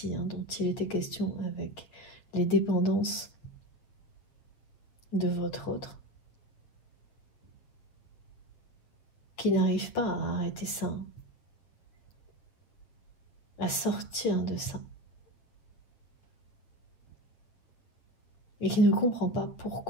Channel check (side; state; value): right; late; 8.4 ms